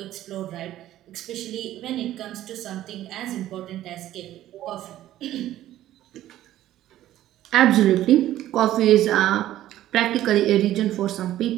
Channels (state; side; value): quieter; left; 13.5 dB